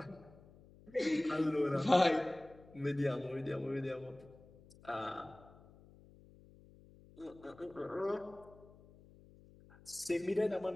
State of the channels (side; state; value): left; noise; hum, 23 dB below the sound